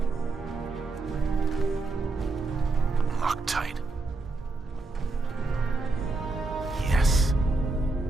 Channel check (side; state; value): left; quieter; 3.4 dB